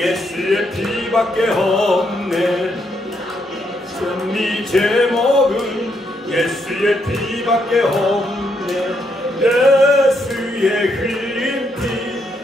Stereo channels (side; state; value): both; normal; correlation 0.76